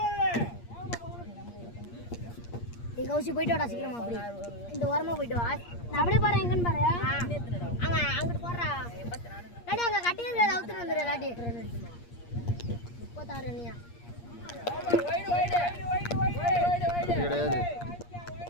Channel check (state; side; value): late; right; 8.5 ms